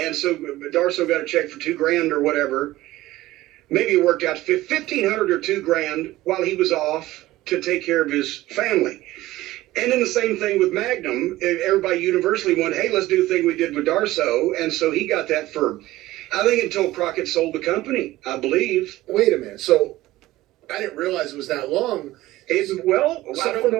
so Darso got a check for $2,000 or whatever. Maybe it worked out to $1,500 or $2,000 while he was off to take care of his family. And then the same thing with Magnum. Everybody universally went, hey, let's do the thing we did with Darso. And so he got that for, I think, until Crockett sold the company, I believe. Wait a minute. So I didn't realize it was that long. I don't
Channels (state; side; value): quieter; left; 16.8 dB